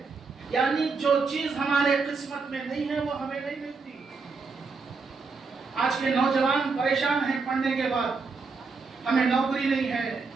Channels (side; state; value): left; quieter; 4.5 dB